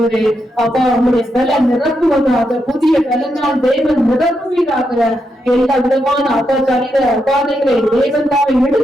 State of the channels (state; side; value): normal; both; correlation 0.83